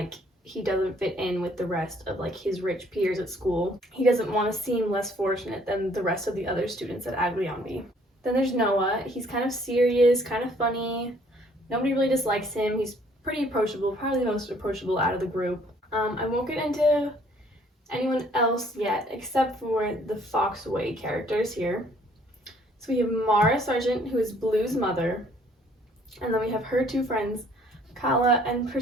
he doesn't fit in with the rest of like his rich peers at school. He doesn't want to seem less fortunate than the rest of the other students at Aglianby. Then there's Noah. He's kind of serious, kind of funny. Nobody really dislikes him. He's pretty approachable, probably the most approachable out of the group. I won't get into anyone else yet, except for the Foxway characters here. So we have Mara Sargent, who is Blue's mother, and then we have her 2 friends, Kala and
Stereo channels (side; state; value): both; normal; correlation 0.61